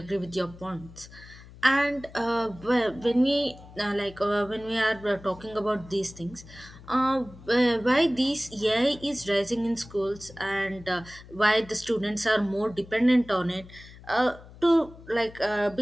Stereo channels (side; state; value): left; noise; hum, 19 dB below the sound